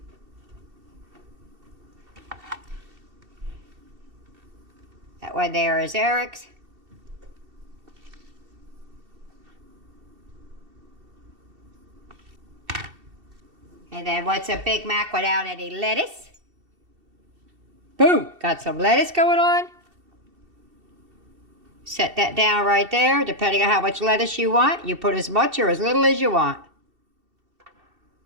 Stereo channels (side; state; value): left; late; 2.7 ms